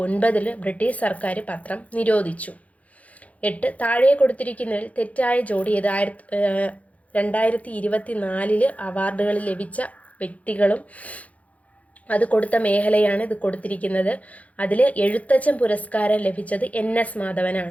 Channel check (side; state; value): right; late; 0.068 ms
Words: ബ്രിട്ടീഷ് സർക്കാർ പത്രം നിരോധിച്ചു. 8, താഴെ കൊടുത്തിരിക്കുന്നതിൽ തെറ്റായ ജോഡി ഏത്. 2024 അവാർഡുകൾ ലഭിച്ച വ്യക്തികളും അത് കൊടുത്ത മേഖലയാണ് ഇത് കൊടുത്തിരിക്കുന്നത്. അതിൽ എഴുത്തച്ഛൻ പുരസ്കാരം ലഭിച്ചത് NS